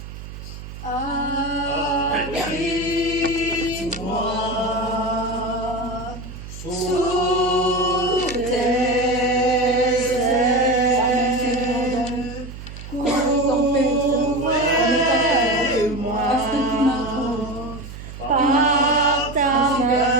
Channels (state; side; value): noise; right; hum, 12 dB below the sound